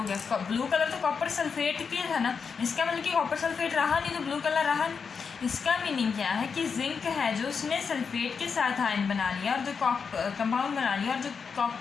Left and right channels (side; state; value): right; quieter; 5.8 dB